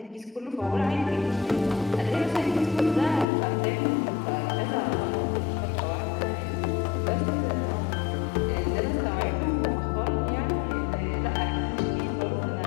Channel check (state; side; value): drops out; right; at 3.2 s